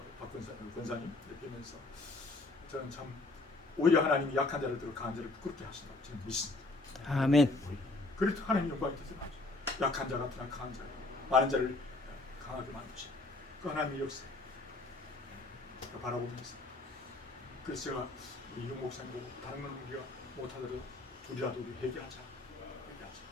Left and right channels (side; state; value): right; quieter; 3.1 dB